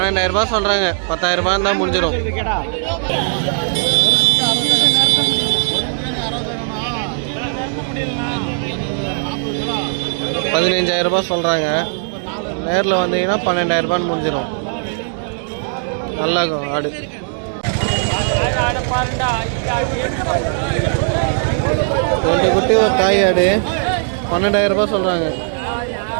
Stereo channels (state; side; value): silent; left; digital silence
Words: ரூபாய் சொல்கிறாங்க. 10,000 ரூபாய் தான் முடிஞ்சிடும். ₹15,000 சொல்கிறாங்க. நேரில் வந்தீங்கன்னா 12,000 ரூபான்னு முடிஞ்சிடும். நல்லா இருக்கும் ஆடு. 2 குட்டி ஒரு தாய் ஆடு 12,000 ரூபாய் சொல்கிறாங்க.